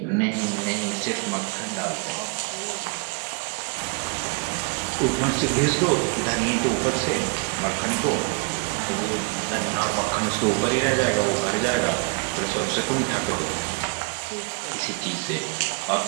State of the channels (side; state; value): left; quieter; 31.6 dB